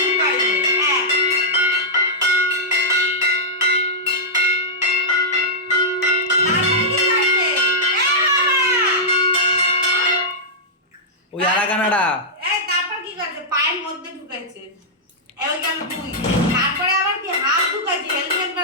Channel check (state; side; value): normal; both; correlation -0.11